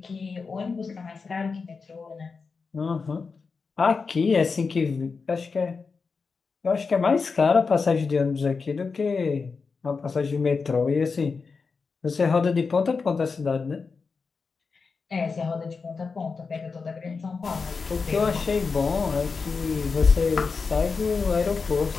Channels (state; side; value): quieter; right; 4.8 dB